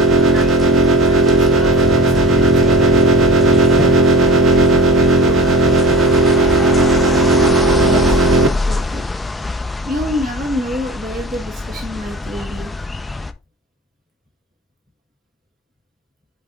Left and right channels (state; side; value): normal; both; correlation 0.36